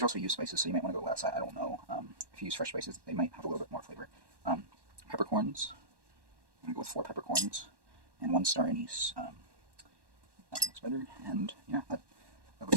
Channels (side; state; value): left; late; 1.1 ms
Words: are also used spices, so you might want to go less. I don't know. If you use fresh spices, they might have a little bit more flavor. Peppercorns. I'm gonna go with 4 peppercorns and 1 star anise. That looks better, and yeah, that